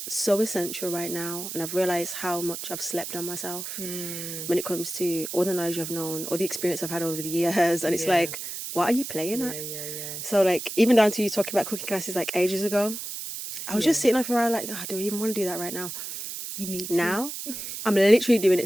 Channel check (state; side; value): noise; right; hiss, 7 dB below the sound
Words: so essential right now, and I've realized how much I've slept on myself when it comes to all the knowledge I've known, all the experience I've had over the years, and it's like, what are you playing at? Yeah. So even down to you talking about cooking classes ages ago, I was just sitting there for a while do I even want to do that right now? You need Now I'm literally doing